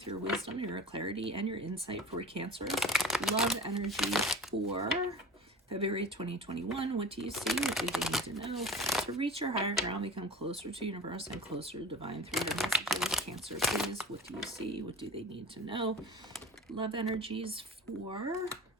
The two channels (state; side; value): normal; both; correlation 0.36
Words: your wisdom, your clarity, and your insight for Cancers. Love energy for February 2021. What do you see? What do they need to know? To reach your higher ground, become closer to universe and closer to divine through your messages. Cancer, please. What do you see? What do they need to know? Love energies for...